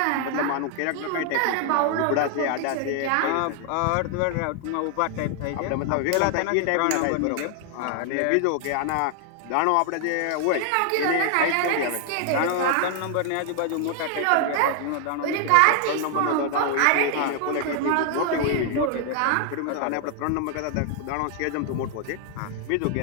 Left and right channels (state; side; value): different; both; correlation 0.00